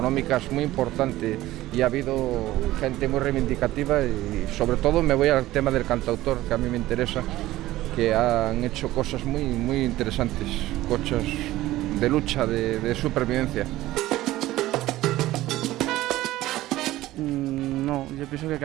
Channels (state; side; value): quieter; left; 16.1 dB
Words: muy importantes, y ha habido gente muy reivindicativa y sobre todo me voy al tema del cantautor, que a mí me interesa, que han hecho cosas muy interesantes, cosas de lucha, de supervivencia. No, yo pienso que